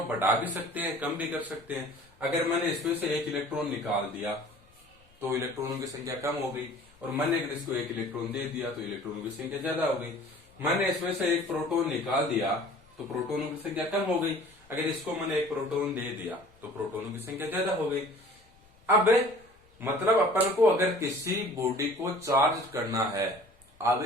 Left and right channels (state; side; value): noise; left; rumble, 30 dB below the sound